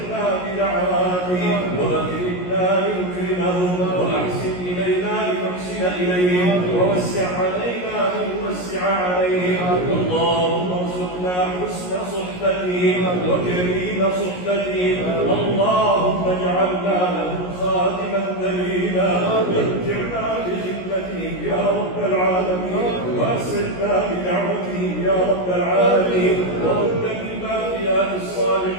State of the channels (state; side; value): late; right; 17 ms